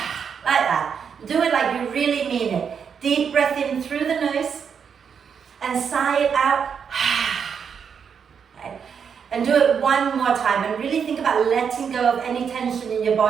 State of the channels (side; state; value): left; quieter; 6.9 dB